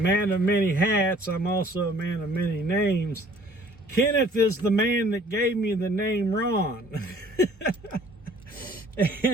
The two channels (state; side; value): normal; both; correlation 0.55